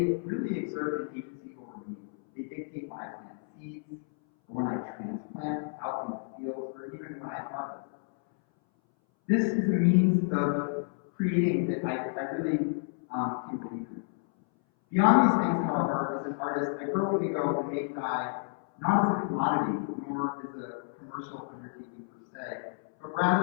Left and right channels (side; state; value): right; silent; 57 dB below the other